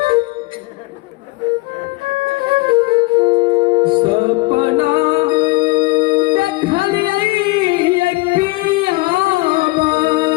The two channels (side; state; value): right; quieter; 22.6 dB